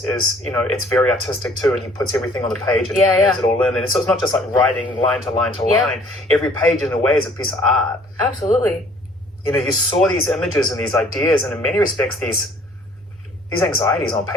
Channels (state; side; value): normal; both; correlation 0.56